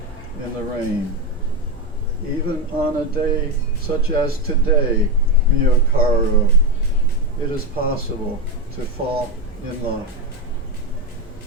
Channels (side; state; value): both; normal; correlation 0.12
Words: in the rain. Even on a day such as today, mio caro, it is possible to fall in love.